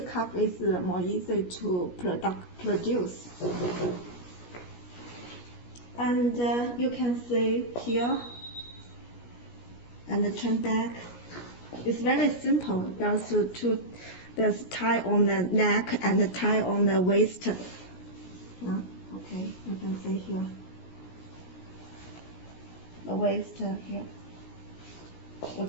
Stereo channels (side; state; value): right; late; 17 ms